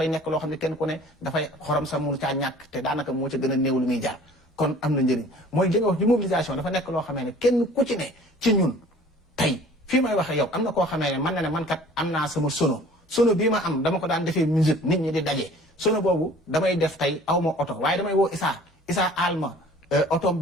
nekk loo xam ne kenn ku ne dafay xorom sa mënu caa ñàkk te daanaka moo ca gën a néew lu muy jaar kon am na njëriñ mooy li nga wax ci mobilisation dafa nekk loo xamee ne kenn ku ci ne ci ñun tey fii may waxee yow am na koo xamee ne man na ne man kat am naa sama sono bii ma am dama ko daan defee musique nit ñi di daje sono boobu damay def tey aw ma oto waaye damay woo Issa alma oto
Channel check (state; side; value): normal; both; correlation 0.49